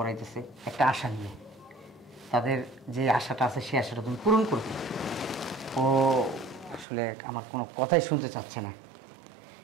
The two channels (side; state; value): left; drops out; at 6.9 s